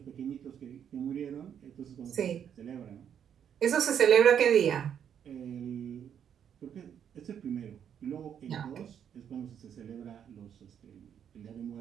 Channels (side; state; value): left; quieter; 8.7 dB